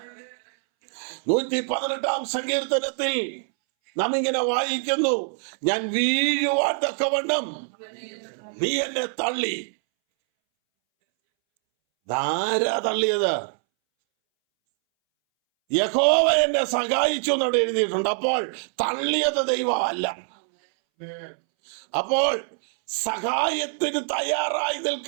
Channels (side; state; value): left; silent; 62 dB below the other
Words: 118-ാം സങ്കീർത്തനത്തിൽ നാം ഇങ്ങനെ വായിക്കുന്നു, ഞാൻ വീഴുവാൻ തക്കവണ്ണം നീ എന്നെ തള്ളി. ധാരാ തള്ളിയത്? യഹോവ എന്നെ സഹായിച്ചു എന്നവിടെ എഴുതിയിട്ടുണ്ട്. അപ്പോൾ തള്ളിയത് ദൈവമല്ല. അപ്പോൾ സഹായത്തിന് തയ്യാറായി